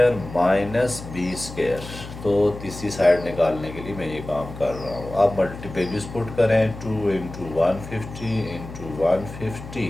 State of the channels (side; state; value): left; noise; hum, 12 dB below the sound